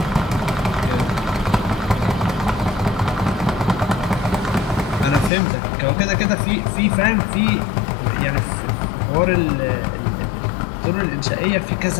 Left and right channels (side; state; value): right; drops out; at 5.3 s